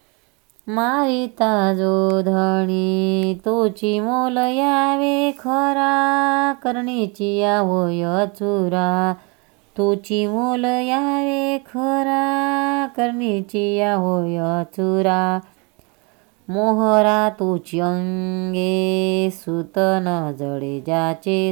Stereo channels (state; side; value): quieter; left; 31.3 dB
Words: मारिता जो धणी. तोची मोल यावे खरा, करणीची या होय चुरा. तोची मोल यावे खरा, करणीची या होय चुरा. मोहरा तोची अंगे, सुत न जडे ज्याचे